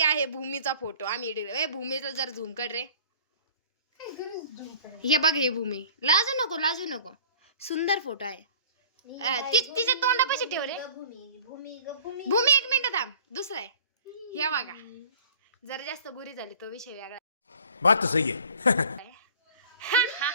आहे भूमीचा फोटो आम्ही एडिट. भूमीचा जर झूम कर रे. हे बघ, हे भूमी. लाजू नको. सुंदर फोटो आहे. तिचे तोंडापाशी ठेव रे. भूमी 1 मिनिट थांब. दुसरा आहे हे बघा. जरा जास्त गुरी झाली तो विषय वेगळा. बात तो सही है.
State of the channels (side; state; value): both; inverted; correlation -0.48